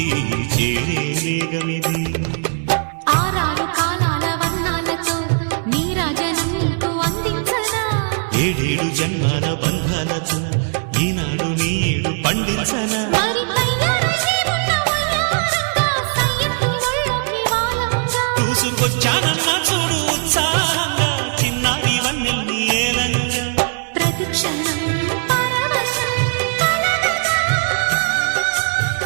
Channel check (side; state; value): left; silent; 58 dB below the other